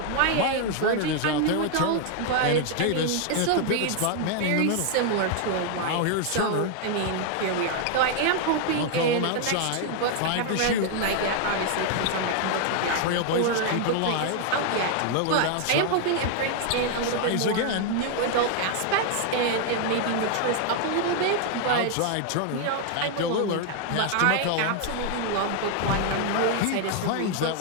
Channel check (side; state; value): both; different; correlation 0.00